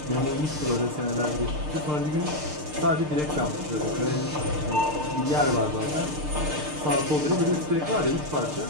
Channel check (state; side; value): late; left; 6.6 ms